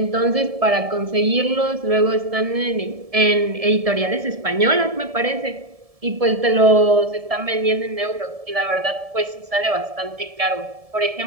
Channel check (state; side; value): late; left; 1.7 ms